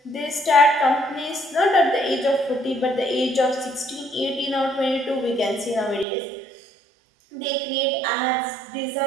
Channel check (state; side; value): drops out; left; at 6.1 s